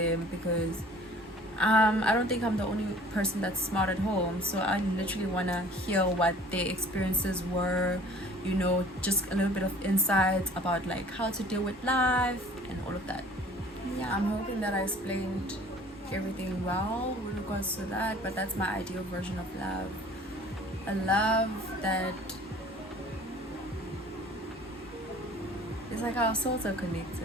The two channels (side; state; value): both; normal; correlation 0.50